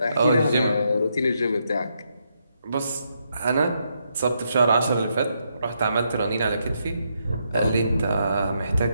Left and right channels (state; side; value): inverted; both; correlation -0.79